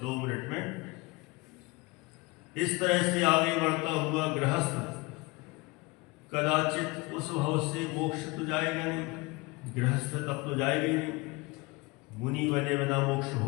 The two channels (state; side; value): quieter; right; 24.9 dB